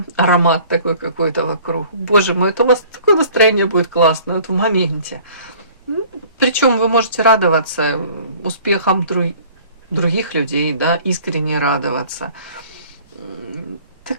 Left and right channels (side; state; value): both; inverted; correlation -0.51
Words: аромат такой какой-то вокруг. Боже мой, это у вас такое настроение будет классное, вот в моменте. Причем вы можете радоваться успехам других людей, да, искренне радоваться.